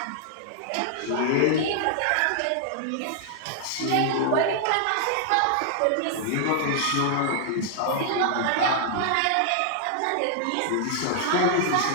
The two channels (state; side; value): different; both; correlation -0.01